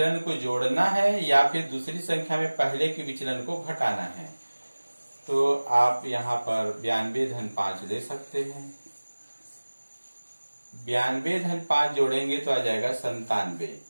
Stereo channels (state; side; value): inverted; both; correlation -1.00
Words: को जोड़ना है या फिर दूसरी संख्या में पहले के विचलन को घटाना है। तो आप यहाँ पर 92 धन 5 ले सकते हैं। 92 धन 5 जोड़ेंगे तो आ जाएगा 97